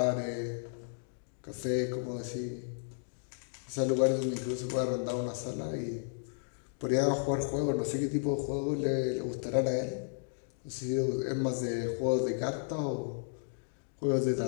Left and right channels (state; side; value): silent; right; digital silence